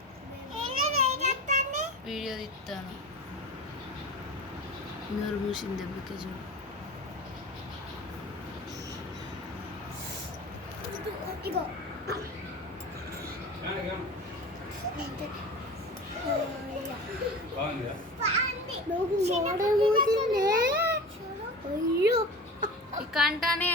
వీడియో తీస్తాను. నోరు మూసింది దెబ్బకి చూడు. ఈ కంటానే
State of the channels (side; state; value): both; normal; correlation 0.33